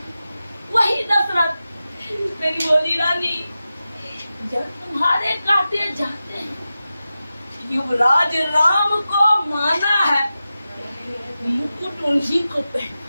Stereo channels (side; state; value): both; inverted; correlation -0.93